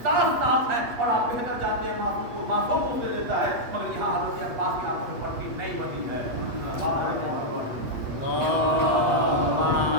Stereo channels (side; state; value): left; late; 8.3 ms